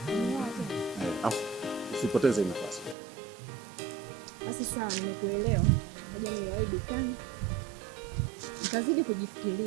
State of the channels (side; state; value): left; drops out; at 3.0 s